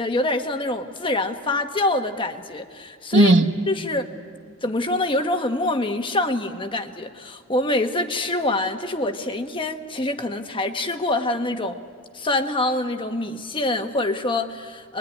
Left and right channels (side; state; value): both; normal; correlation 0.36